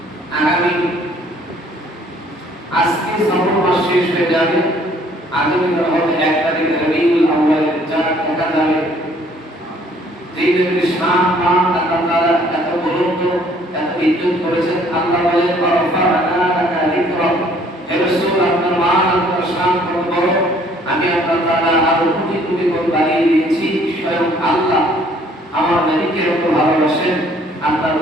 আগামী আজকে সফর মাস শেষ হয়ে যাবে, আগামী হবে 1 তারিখ রবিউল আউয়াল চাঁদ দেখা যাবে। যে নবীর শান মান আল্লাহ তাআলা এত বুলন্দ এত ইজ্জত করেছেন, আল্লাহ বলেন ওয়ারফা'না লাকা যিকরাক, হে রাসূল আপনার মান আপনার শান কত বড়, আমি আল্লাহ তাআলা আরো কোটি কোটি গুণ বাড়িয়ে দিয়েছি। স্বয়ং আল্লাহ আমার নবীকে এত ভালোবাসেন, আল্লাহ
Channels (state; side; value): normal; both; correlation 0.60